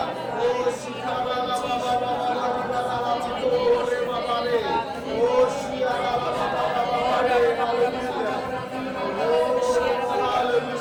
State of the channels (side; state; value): both; identical; correlation 1.00